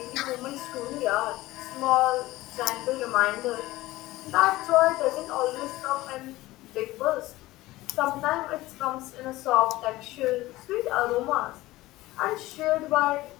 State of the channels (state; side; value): quieter; right; 18.0 dB